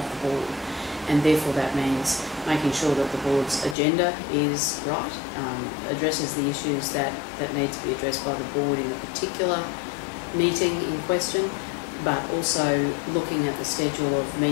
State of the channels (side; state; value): right; drops out; at 3.8 s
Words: the board, and therefore that means making sure that the board's agenda is right, addresses the issues that need to be addressed by the board in a particular meeting in question, but also looking at the schedule of